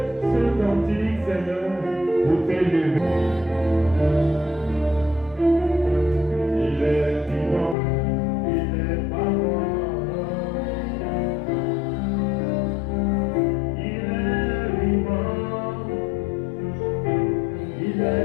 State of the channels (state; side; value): drops out; right; at 7.8 s